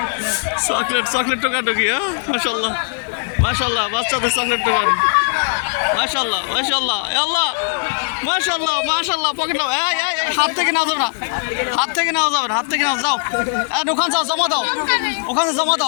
চকলেট চকলেট টোকাটুকি, হ্যাঁ মাশাল্লাহ মাশাল্লাহ, বাচ্চাদের চকলেট টোকান, মাশাল্লাহ মাশাল্লাহ আল্লাহ মাশাল্লাহ মাশাল্লাহ। পকেট নাও, এই এই এই, হাত থেকে নাও যাবে না, হাত থেকে নাও যাবে না, হাত থেকে নাও, যাও ওখানে যাও, জমা দাও, ওখানে জমা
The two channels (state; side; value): silent; right; digital silence